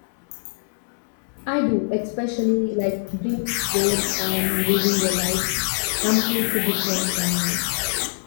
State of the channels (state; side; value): silent; right; 63 dB below the other